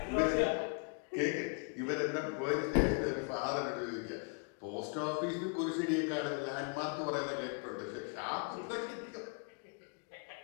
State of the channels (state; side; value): quieter; right; 38.6 dB